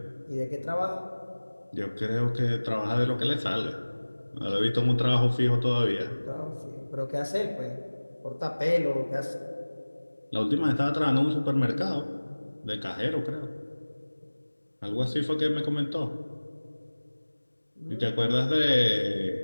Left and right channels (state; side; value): inverted; both; correlation -1.00